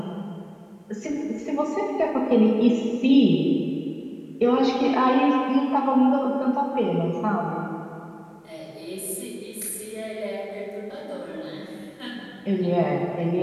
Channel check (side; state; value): both; identical; correlation 1.00